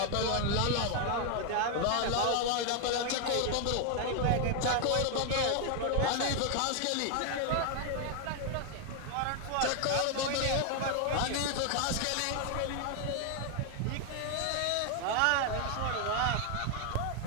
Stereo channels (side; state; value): both; different; correlation 0.01